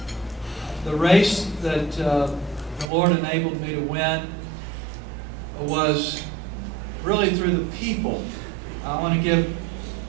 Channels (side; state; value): left; drops out; at 2.9 s